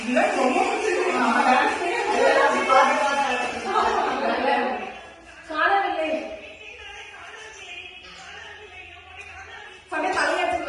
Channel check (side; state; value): both; identical; correlation 1.00